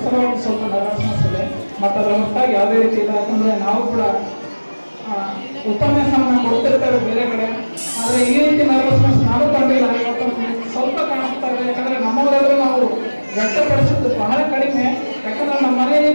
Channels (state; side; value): inverted; both; correlation -1.00